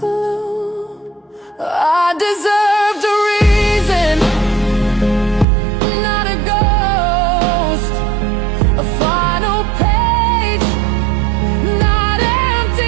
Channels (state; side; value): drops out; left; at 5.5 s